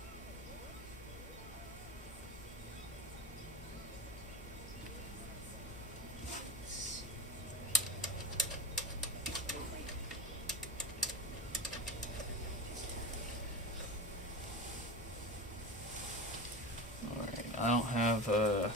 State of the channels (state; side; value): normal; both; correlation 0.27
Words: Alright, I don't have